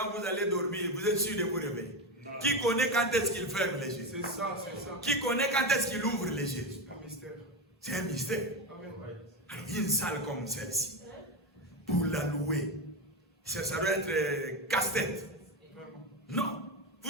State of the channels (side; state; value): both; normal; correlation 0.15